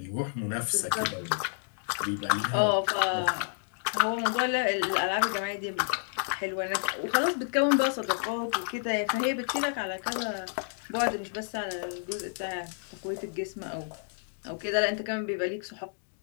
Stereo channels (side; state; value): right; silent; digital silence